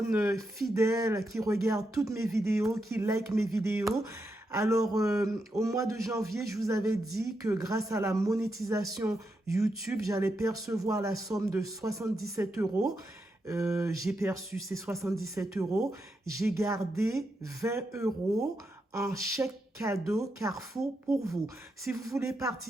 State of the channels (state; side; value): normal; both; correlation 0.84